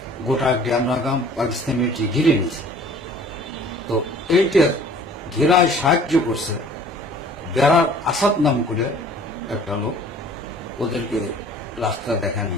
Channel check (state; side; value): normal; both; correlation 0.51